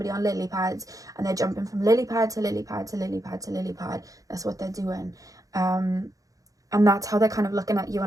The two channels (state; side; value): late; left; 0.17 ms